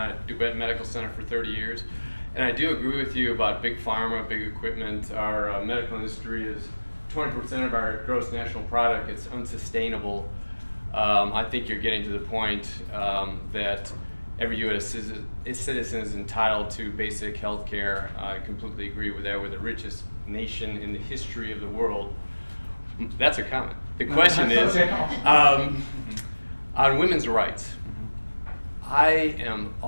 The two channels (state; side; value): inverted; both; correlation -1.00